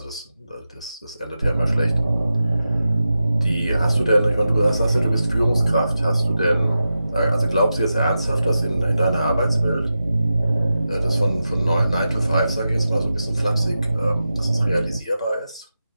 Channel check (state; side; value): inverted; both; correlation -0.91